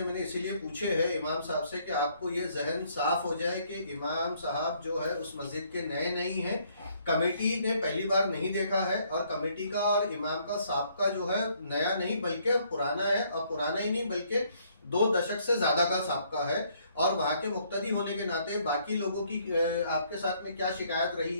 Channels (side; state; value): both; inverted; correlation -0.67